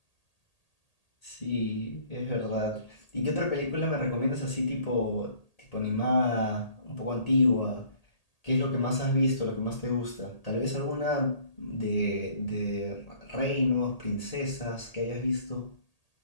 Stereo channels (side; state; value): right; late; 1.8 ms